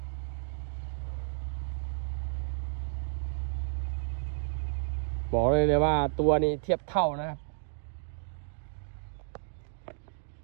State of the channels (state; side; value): silent; left; digital silence